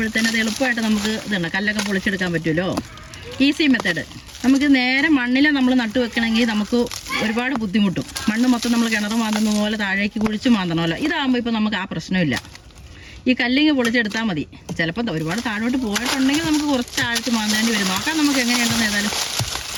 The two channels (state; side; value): identical; both; correlation 1.00